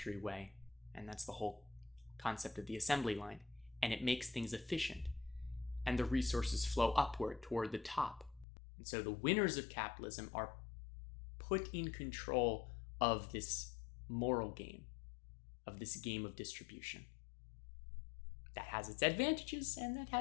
way. And that's the whole concept of the assembly line. And it makes things efficient. And the resources flow upward toward the top. And so the winners of capitalism are put in control of this moral game, of this game of distribution. That has its advantages and that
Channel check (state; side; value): drops out; right; at 8.5 s